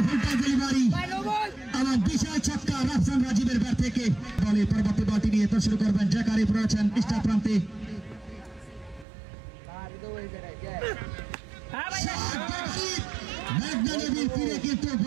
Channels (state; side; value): drops out; left; at 9.1 s